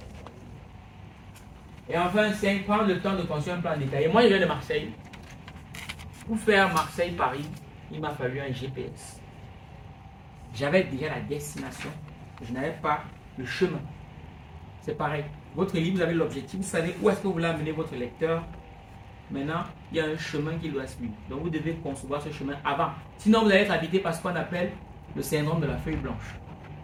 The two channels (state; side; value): identical; both; correlation 1.00